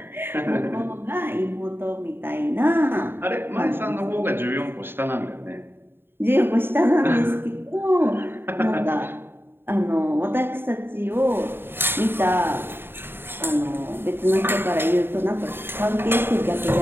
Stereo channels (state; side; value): late; left; 0.11 ms